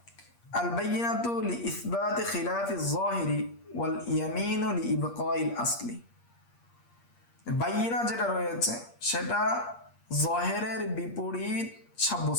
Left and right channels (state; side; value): late; right; 8.5 ms